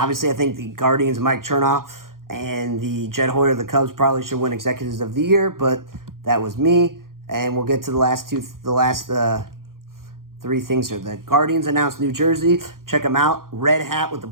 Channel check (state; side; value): late; left; 0.91 ms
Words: I think the Guardians, Mike Chernoff, and the Jed Hoyer of the Cubs probably should win Executives of the Year, but that was me. And we'll get to the last three things here. The Guardians announced New Jersey. Check them out. Red hat with the